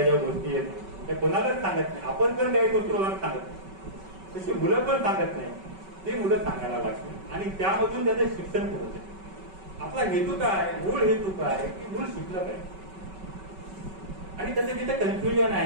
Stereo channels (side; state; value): left; late; 5.3 ms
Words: ज्या गोष्टी आहेत त्या कोणालाच सांगत नाही. आपण पण काही गोष्टी कोणाला सांगत नाही, तशी मुलं पण सांगत नाही. ते मुलं सांगायला लागते आणि त्यामधून त्याचं शिक्षण पुढे जाते. आपला हेतू काय, मूळ हेतू काय की मूळ शिकलं पाहिजे आणि त्याचं तिथे कन्फ्युजन